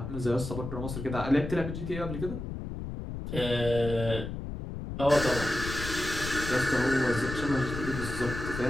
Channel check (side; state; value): left; noise; rumble, 7 dB below the sound